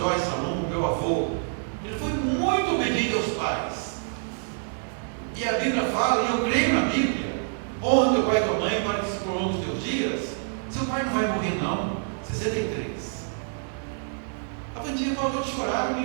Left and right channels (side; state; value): left; silent; digital silence